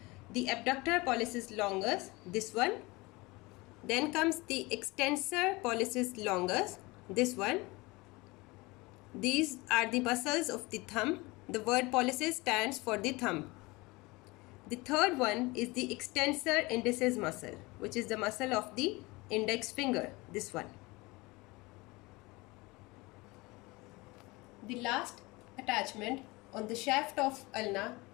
the abductor pollicis longus, this one. Then comes the extensor pollicis longus, this one. These are the muscles of the thumb. The word pollicis stands for the thumb. The third one is the extensor indicis muscle, which is the muscle of the index finger, this one. The last attachment on the shaft of ulna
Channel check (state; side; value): quieter; right; 23.4 dB